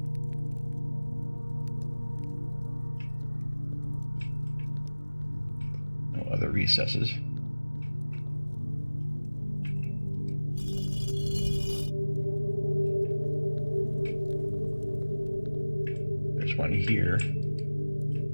No other recesses. There's one here.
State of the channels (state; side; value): inverted; both; correlation -1.00